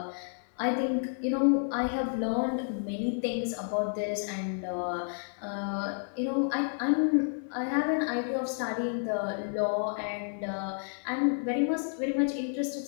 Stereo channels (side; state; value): right; silent; 57 dB below the other